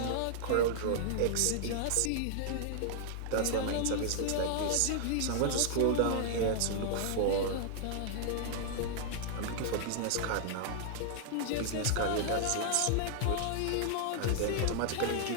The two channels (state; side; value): different; both; correlation -0.01